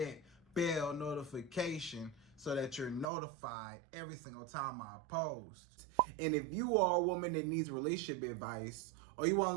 bell notification so that you're notified every single time I post. And if you are a woman that needs relationship advice, or you want to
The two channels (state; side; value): drops out; left; at 3.1 s